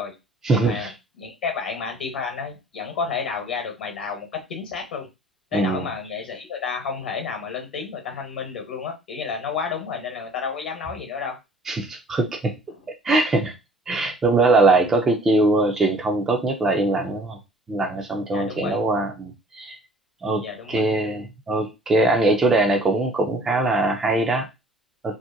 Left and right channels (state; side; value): normal; both; correlation 0.52